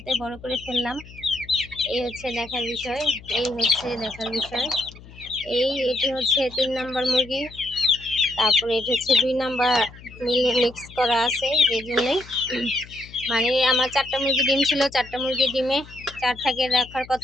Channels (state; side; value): noise; left; hum, 19 dB below the sound